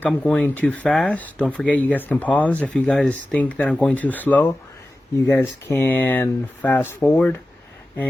I'm going too fast, don't forget you guys can pause. If you guys think that I'm going too slow, you guys can fast forward.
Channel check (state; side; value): normal; both; correlation 0.95